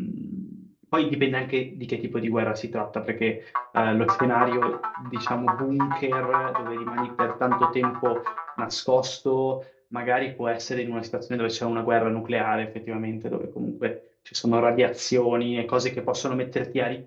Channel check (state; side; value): identical; both; correlation 1.00